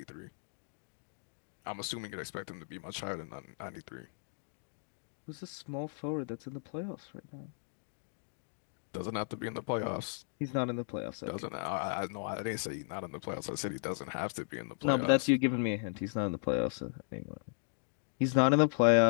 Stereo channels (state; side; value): silent; right; digital silence